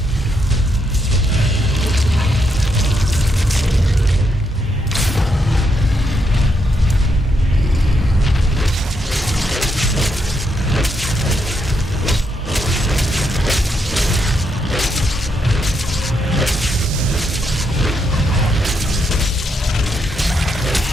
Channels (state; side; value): normal; both; correlation 0.79